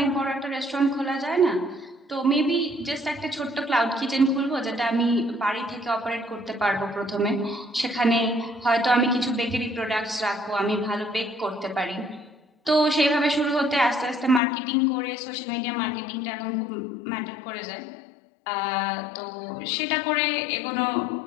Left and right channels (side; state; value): right; drops out; at 14.4 s